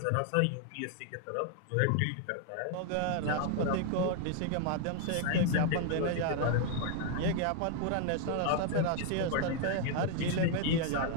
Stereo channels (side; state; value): both; different; correlation 0.00